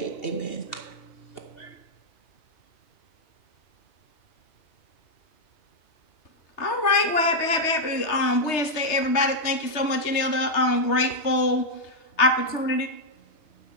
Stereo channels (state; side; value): late; right; 3.2 ms